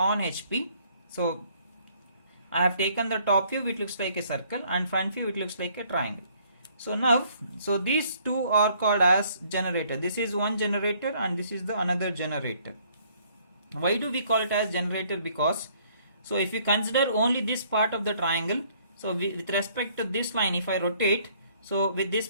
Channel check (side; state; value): both; inverted; correlation -0.63